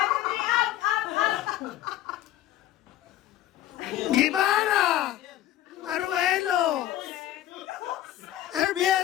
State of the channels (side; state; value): right; quieter; 13.3 dB